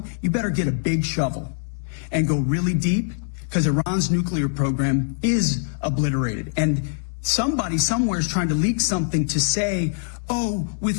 you better get a big shovel and go really deep, because Iran's nuclear program is obliterated. And somebody somewhere is trying to leak something to say, oh,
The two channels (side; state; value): right; silent; digital silence